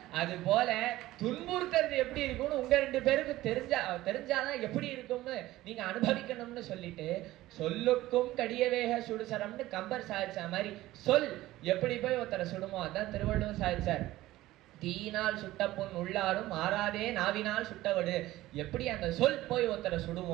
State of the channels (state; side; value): quieter; left; 16.5 dB